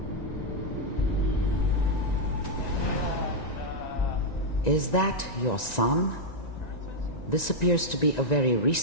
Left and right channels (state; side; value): late; right; 1.9 ms